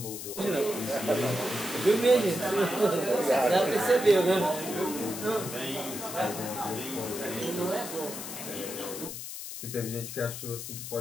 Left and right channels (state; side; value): noise; left; hiss, 8 dB below the sound